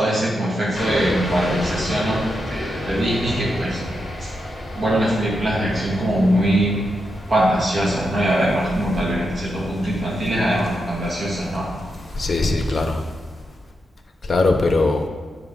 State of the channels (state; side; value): normal; both; correlation 0.85